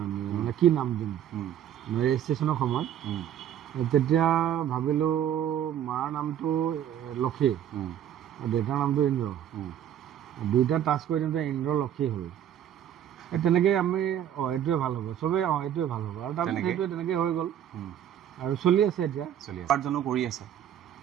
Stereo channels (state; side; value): quieter; left; 10.3 dB